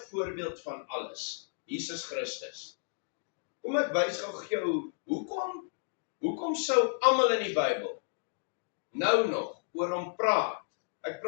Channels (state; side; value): silent; right; digital silence